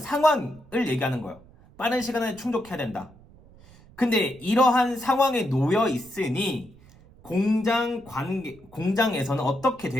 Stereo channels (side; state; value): right; noise; rumble, 24 dB below the sound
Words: 얘기하는 거예요. 빠른 시간에 충족해야 된다. 근데 이러한 상황에 놓여 있으니 공장에서는 어떻게